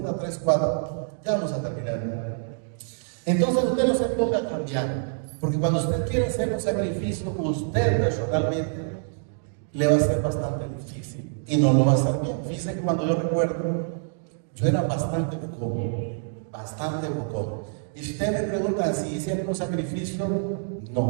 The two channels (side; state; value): left; silent; digital silence